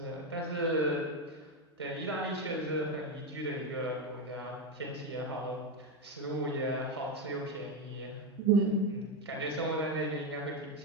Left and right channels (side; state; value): both; normal; correlation 0.11